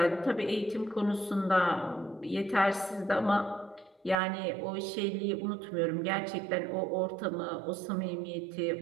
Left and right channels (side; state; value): left; drops out; at 4.2 s